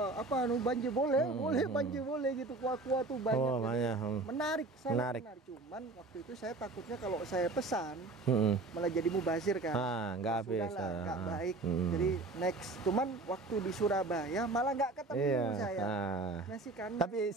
banjir boleh, banjir boleh gitu, kuah-kuah tuh banyak. Oh, Jadi banyak. Menarik, sangat Menarik. menarik. Cuman waktu itu saya takutnya kalau saya pesan malah jadi mubazir kan. Nggak habis. Sudahlah, nggak baik. Jadi next. Cuman waktu di Surabaya malah nggak ketemu Iya. saya. Nasi kandar. Tapi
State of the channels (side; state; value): left; quieter; 3.2 dB